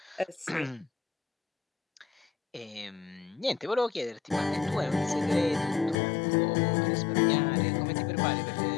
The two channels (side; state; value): right; drops out; at 6.0 s